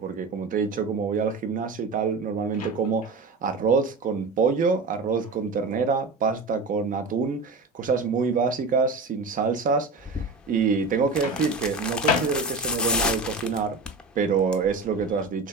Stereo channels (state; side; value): quieter; left; 3.7 dB